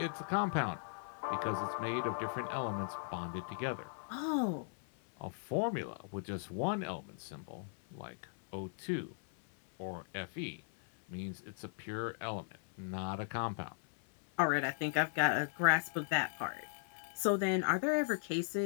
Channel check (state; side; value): silent; right; 53 dB below the other